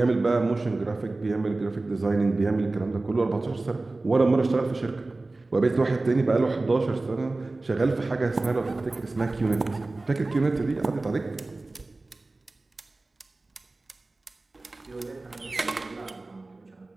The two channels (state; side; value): quieter; left; 3.2 dB